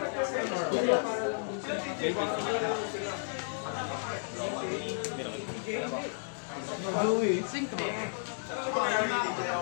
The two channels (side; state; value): right; silent; digital silence